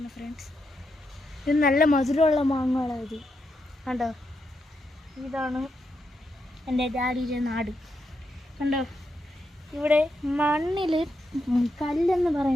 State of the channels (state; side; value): normal; both; correlation 0.83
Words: ഫ്രണ്ട്സ്. ഇത് നല്ല മധുരമുള്ള മാങ്ങകളാണ്. ഇത് കണ്ടോ? ഇതാണ് എൻ്റെ ഡാഡിയുടെ നാട്. കണ്ടോ, ഇവിടെ മണ്ണിൽ കല്ലെന്ന്